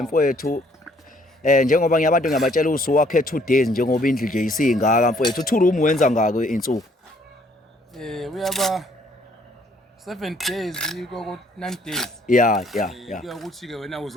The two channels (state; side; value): normal; both; correlation 0.63